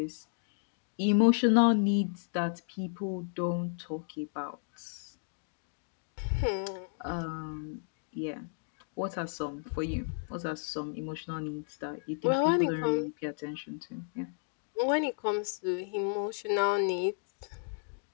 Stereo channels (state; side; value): silent; right; digital silence